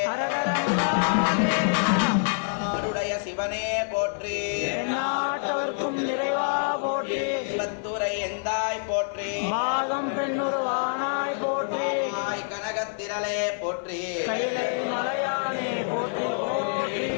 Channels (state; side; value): silent; right; digital silence